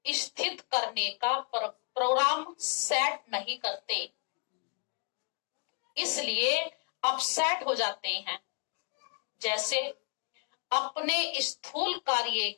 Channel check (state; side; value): quieter; right; 37.3 dB